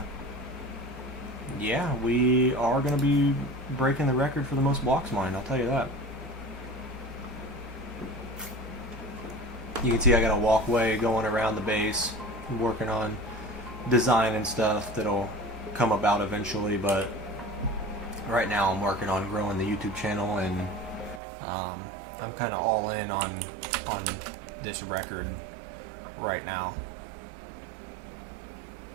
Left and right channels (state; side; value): drops out; left; at 21.2 s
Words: yeah, we are going to be breaking the record for the most blocks mined, I'll tell you that. You can see I got a walkway going around the base. I'm working on design and stuff that'll come about eventually, but right now I'm working on growing the YouTube channel, and I'm kind of all in on this record right now.